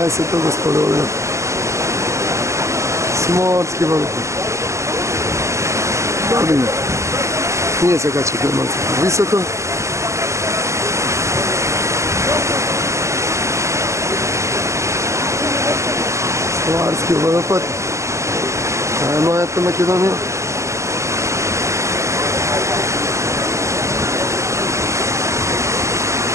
gospodovina. Smorski vodopad. Babina. Nije se kače kod malce visoko. Slovarski vodopad. Ajmo, eto Makedonija.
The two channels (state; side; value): late; left; 0.14 ms